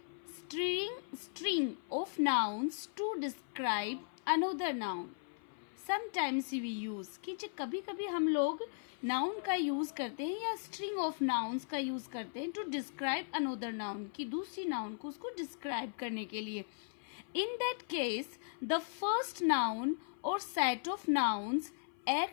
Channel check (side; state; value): right; silent; 53 dB below the other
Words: string of nouns to describe another noun. Sometimes we use कि कभी कभी हम लोग नाउन का यूज करते हैं या स्ट्रिंग ऑफ नाउन्स का यूज करते हैं टू डिस्क्राइब अनदर नाउन, कि दूसरी नाउन को उसको डिस्क्राइब करने के लिए. In that case, the first noun or set of nouns